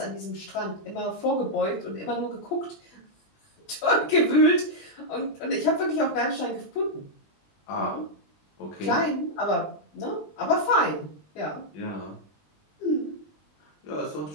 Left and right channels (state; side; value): late; right; 20 ms